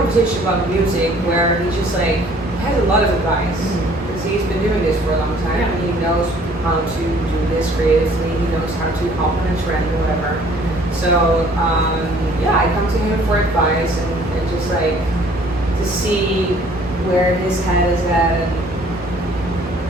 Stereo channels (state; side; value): normal; both; correlation 0.56